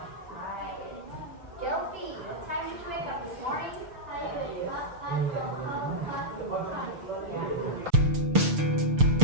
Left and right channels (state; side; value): late; left; 6.8 ms